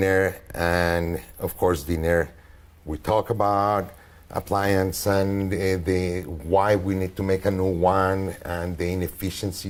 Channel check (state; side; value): identical; both; correlation 1.00